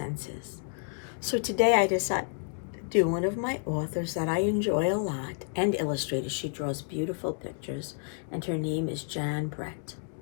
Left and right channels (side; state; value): right; silent; 58 dB below the other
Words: So today I decided to do one of my authors that I enjoy a lot and illustrator. She draws beautiful pictures and her name is Jan Brett.